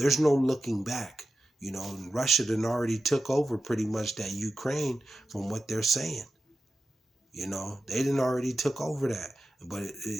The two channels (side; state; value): both; normal; correlation 0.92